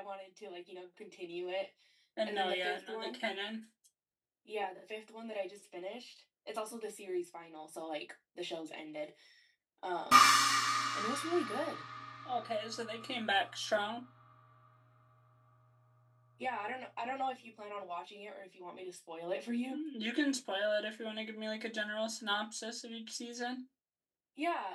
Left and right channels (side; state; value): both; identical; correlation 1.00